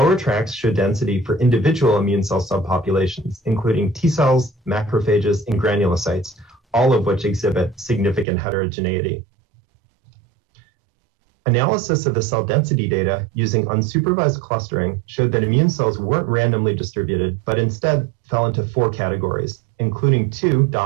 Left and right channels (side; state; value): left; drops out; at 8.2 s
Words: tracks show density for individual immune cell subpopulations, including T cells, macrophages, and granulocytes, all of which exhibit significant heterogeneity. Analysis of the cell density data using unsupervised clustering showed that immune cells weren't randomly distributed, but instead fell into 4 categories, including 2